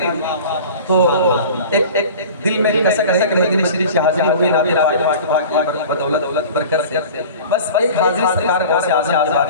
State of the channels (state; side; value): inverted; both; correlation -0.39